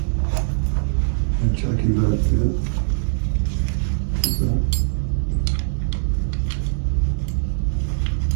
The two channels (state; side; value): silent; left; digital silence